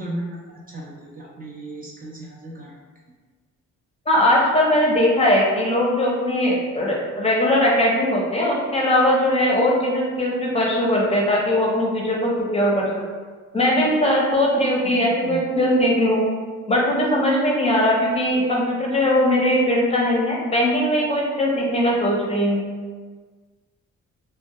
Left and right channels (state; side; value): normal; both; correlation 0.28